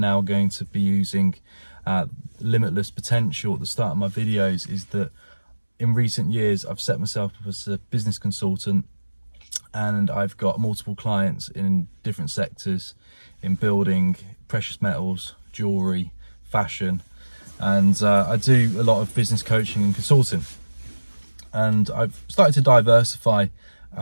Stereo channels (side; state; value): both; inverted; correlation -1.00